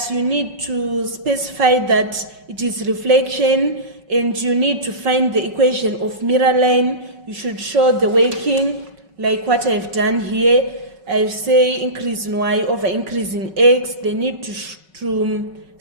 you need to specify that it is reflection, and you need to find the equation of mirror line. You should show the working like what I've done here. I say increase in y over increase in x. They need to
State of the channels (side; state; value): left; late; 5.3 ms